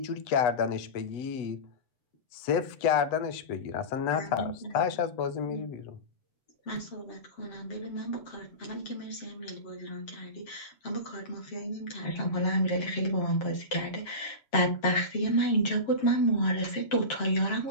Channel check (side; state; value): right; late; 7.5 ms